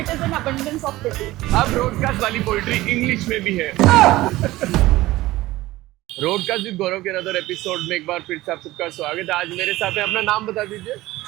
It is an abundance of pity. अब broadcast वाली poetry English में भी है। Broadcast with गौरव के another episode में एक बार फिर से आप सबका स्वागत है। आज मेरे साथ है, अपना नाम बता दीजिए।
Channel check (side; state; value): left; quieter; 17.7 dB